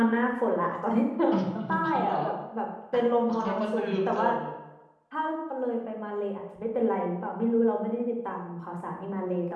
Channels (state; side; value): identical; both; correlation 1.00